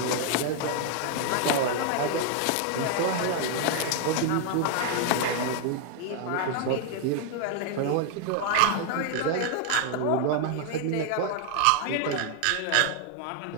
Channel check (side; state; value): both; different; correlation 0.00